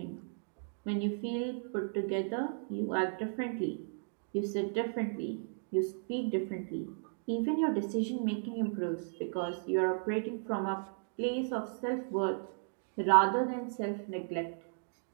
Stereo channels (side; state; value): left; silent; digital silence